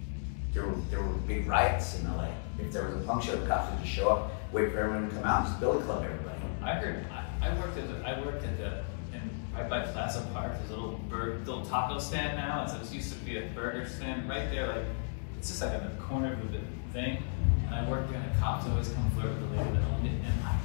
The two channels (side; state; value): right; silent; digital silence